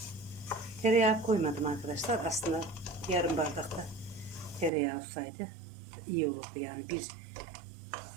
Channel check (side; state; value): left; drops out; at 4.7 s